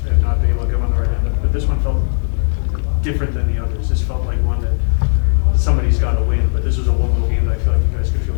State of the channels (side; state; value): right; silent; digital silence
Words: not been able to come on the right end of. But this one felt different than the others. This felt like one that somebody's got to win. But this was a one-goal game that I feel like you guys could feel